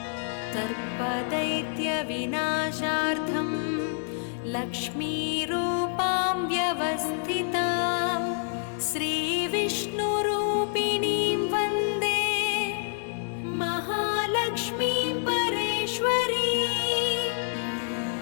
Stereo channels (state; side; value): silent; right; 60 dB below the other